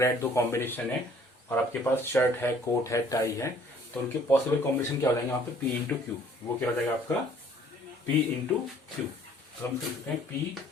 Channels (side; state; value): both; normal; correlation 0.57